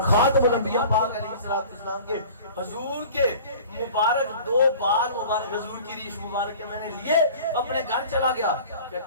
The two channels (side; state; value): both; inverted; correlation -0.43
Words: خاتم الانبیاء پاک علیہ السلام کے حضور کے مبارک 2 بال مبارک حضور کی ریش مبارک کے میں نے لیے اپنے گھر چلا گیا.